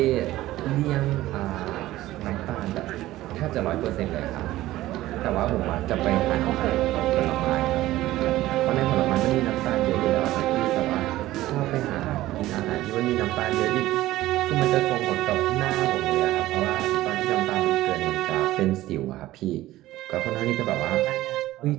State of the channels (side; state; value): left; quieter; 15.9 dB